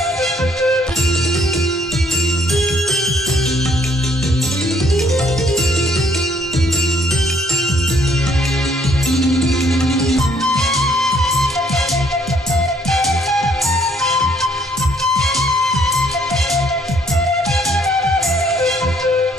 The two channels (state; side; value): normal; both; correlation 0.66